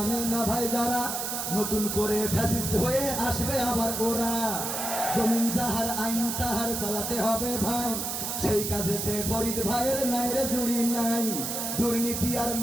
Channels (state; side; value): noise; right; hiss, 3 dB below the sound